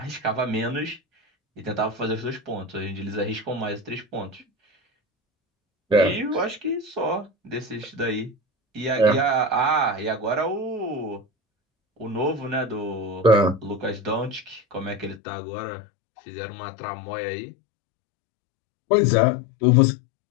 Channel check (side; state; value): right; drops out; at 15.2 s